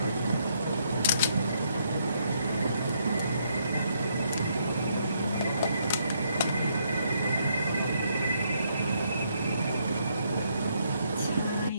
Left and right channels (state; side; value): inverted; both; correlation -0.73